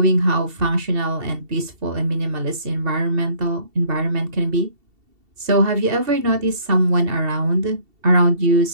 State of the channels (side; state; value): left; late; 2.7 ms